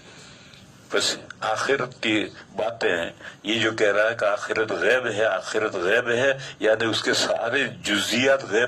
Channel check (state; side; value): identical; both; correlation 1.00